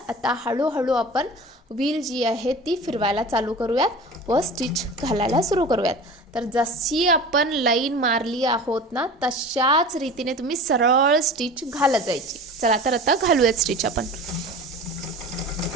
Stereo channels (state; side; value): normal; both; correlation 0.36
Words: आता हळूहळू आपण व्हील जी आहे ती फिरवायला चालू करूयात व स्टिच घालायला सुरू करूयात. तर जशी आपण लाईन मारली आहोत ना तशाच रीतीने तुम्ही सरळ स्टिच घालत जायची. चला तर आता घालूयात स्टिच आपण.